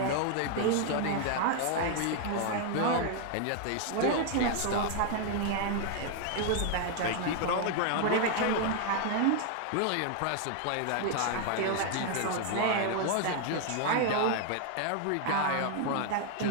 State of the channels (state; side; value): different; both; correlation 0.00